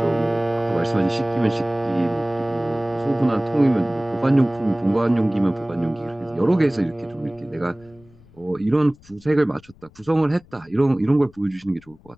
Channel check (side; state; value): left; noise; rumble, 26 dB below the sound